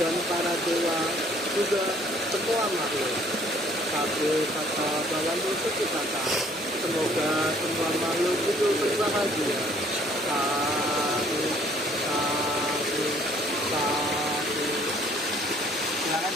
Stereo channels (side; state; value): both; normal; correlation 0.60